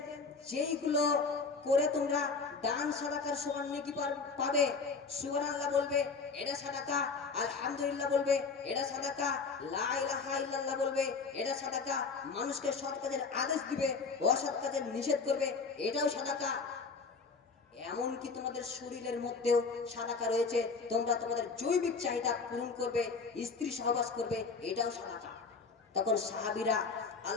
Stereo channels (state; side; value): quieter; right; 4.6 dB